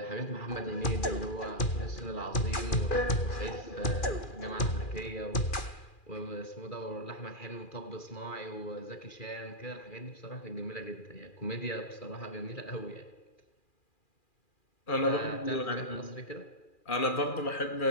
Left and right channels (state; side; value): late; right; 2.4 ms